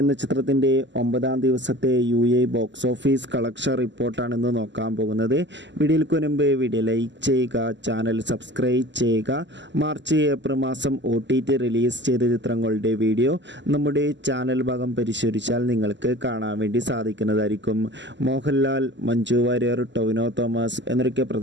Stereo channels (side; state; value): left; late; 0.53 ms